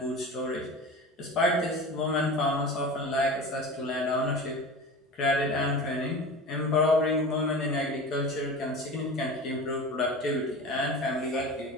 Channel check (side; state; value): both; normal; correlation 0.33